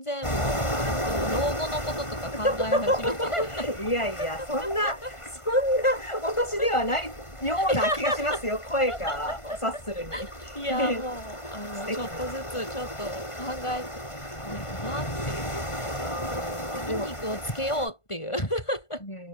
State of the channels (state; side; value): late; right; 1.5 ms